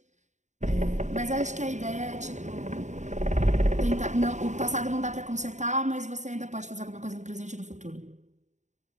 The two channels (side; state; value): left; late; 0.34 ms